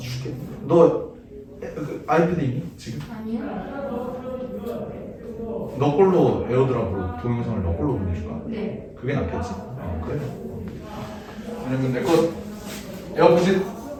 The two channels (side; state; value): both; identical; correlation 1.00